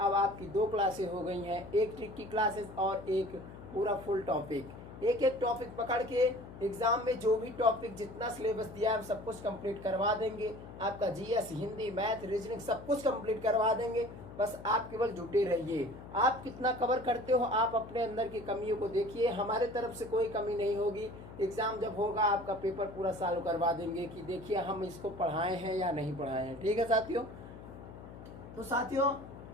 आपकी दो क्लासेस हो गई हैं, एक ट्रिक की क्लासेस और एक पूरा फुल टॉपिक। एक एक टॉपिक पकड़ के एग्जाम में जो भी टॉपिक जितना सिलेबस दिया है हम सब कुछ कंप्लीट करवा देंगे। आपका जीएस, हिंदी, मैथ, रीजनिंग सब कुछ कंप्लीट करवा देंगे। बस आप केवल जुटे रहिए। आप कितना कवर करते हो, आप अपने अंदर की कमियों को देखिए। हमारे तरफ से कोई कमी नहीं होगी। एग्जाम जब होगा आपका पेपर पूरा सॉल्व करवा देंगे कि देखिए हम इसको पढ़ाए हैं या नहीं पढ़ाए हैं। ठीक है साथियों? तो साथियों,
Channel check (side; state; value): left; noise; hum, 15 dB below the sound